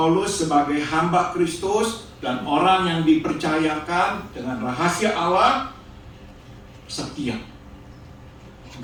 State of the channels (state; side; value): identical; both; correlation 1.00